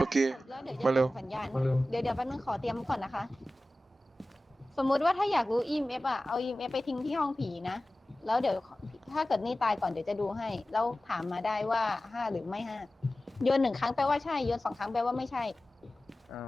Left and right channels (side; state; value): both; normal; correlation 0.96